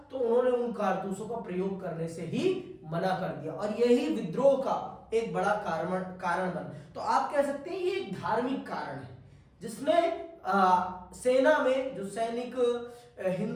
तो उन्होंने उन कारतूसों का प्रयोग करने से ही मना कर दिया और यही विद्रोह का एक बड़ा कारण बना। तो आप कह सकते हैं ये एक धार्मिक कारण है जिसने सेना में जो सैनिक,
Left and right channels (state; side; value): identical; both; correlation 1.00